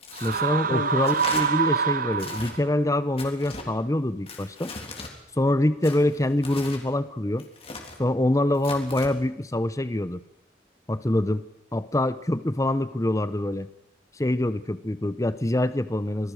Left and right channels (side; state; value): both; normal; correlation 0.65